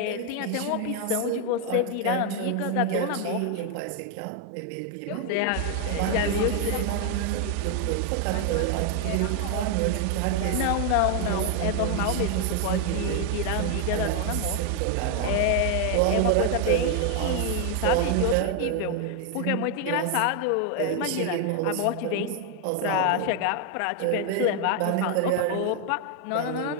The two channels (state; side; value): different; both; correlation 0.01